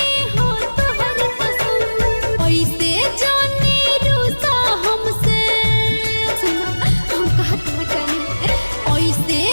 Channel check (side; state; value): both; inverted; correlation -1.00